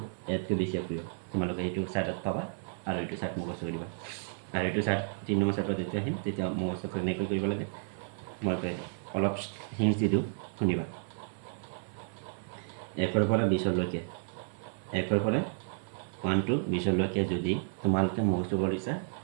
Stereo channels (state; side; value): silent; left; 56 dB below the other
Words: ইয়াতকৈ বেছি সক্ৰিয়, তোমালোকে এইটো চাৰ্টত পাবা আৰু এইটো চাৰ্ট মুখস্থ কৰিবা। আৰু এইটো চাৰ্ট 3 নম্বৰ চাৰ্টত যেতিয়া আহিম তেতিয়া মুখস্থ কেনেকৈ কৰিব লাগে মই অলপ হিণ্টছ দি দিওঁ, শুনিবা। 1ৰ পৰা 20লৈকে, 1ৰ পৰা 1 to 20লৈকে যদি তোমালোকে মুখস্থ কৰিছা